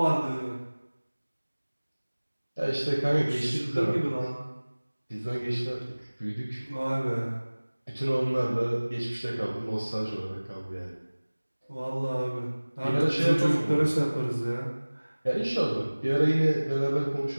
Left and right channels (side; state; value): both; inverted; correlation -1.00